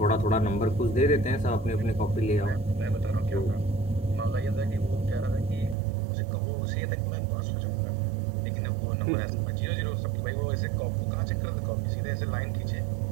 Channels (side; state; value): left; drops out; at 5.8 s